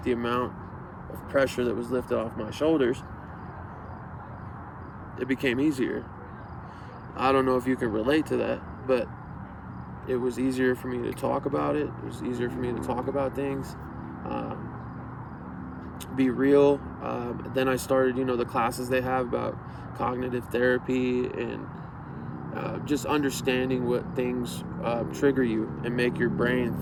the amount of pressure that was lifted off my shoulders, it became easier. I don't know if you can relate to that, but it was easier for me to talk about it. It was easier for me to talk about things, be real. Then I started, the classes they have about cognitive therapy and just understanding what things trigger you and make your brain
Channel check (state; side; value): identical; both; correlation 1.00